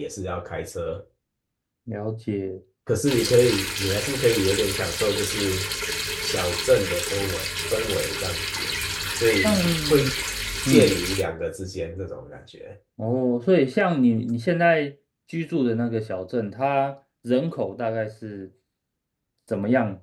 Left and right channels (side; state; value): both; identical; correlation 1.00